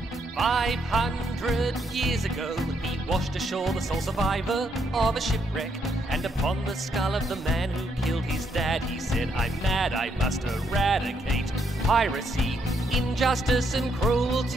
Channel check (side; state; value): both; normal; correlation 0.75